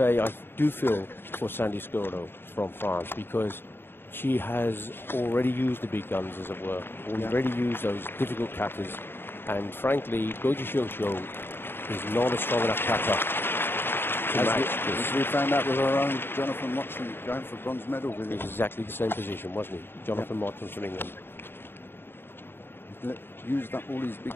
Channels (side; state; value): right; late; 0.10 ms